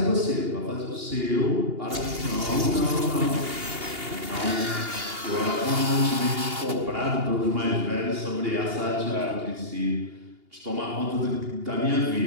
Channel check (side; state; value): left; late; 2.8 ms